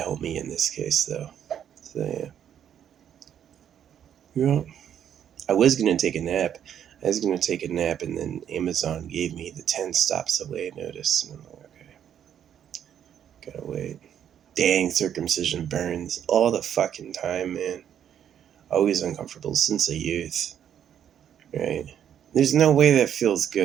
me in this case though. So yeah, yeah. I was gonna take a nap. I was gonna take a nap, and then Amazon gave me the 10 stops away notice, and I'm like, okay, gotta wait. Dang, circumcision burns all the fucking time, man. Always uncomfortable since a youth, right? There's no way that feels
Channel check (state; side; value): quieter; left; 9.4 dB